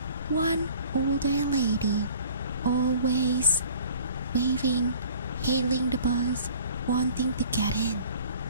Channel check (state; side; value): inverted; both; correlation -0.49